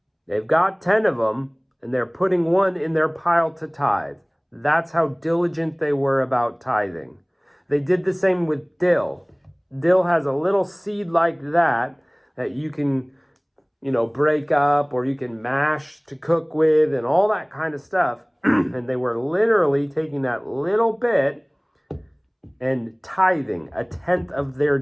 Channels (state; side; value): identical; both; correlation 1.00